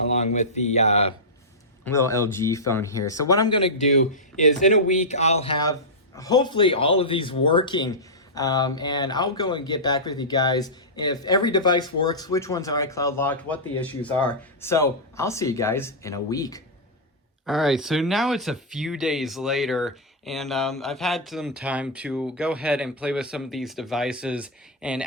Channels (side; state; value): both; normal; correlation -0.10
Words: with the little LG phone here. So what I'm going to do is in a week, I'll have hopefully all of these working, and I'll go and get back with you guys if every device works, which ones are iCloud locked, what the issues are. So I'll see you guys in a week. All right, so now it's a few days later, and I've had some time to go ahead and play with some of these devices and